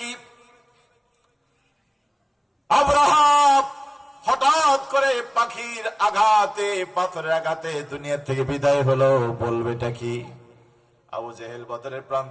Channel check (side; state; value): both; identical; correlation 1.00